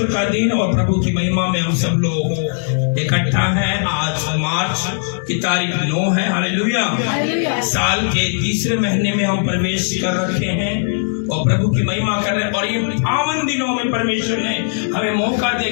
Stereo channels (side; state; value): right; silent; digital silence